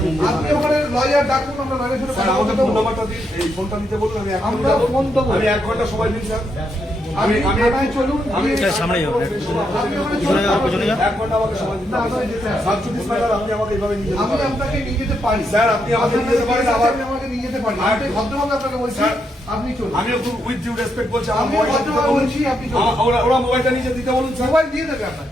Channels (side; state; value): both; normal; correlation 0.80